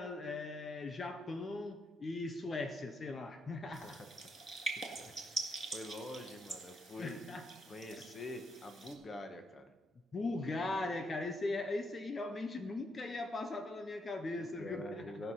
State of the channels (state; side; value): normal; both; correlation 0.78